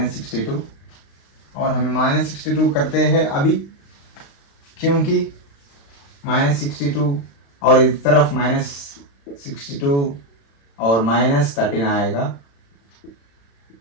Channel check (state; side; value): late; right; 35 ms